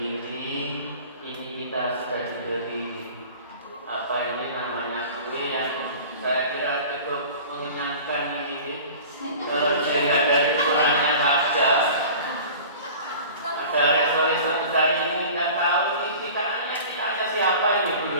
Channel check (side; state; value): both; inverted; correlation -0.41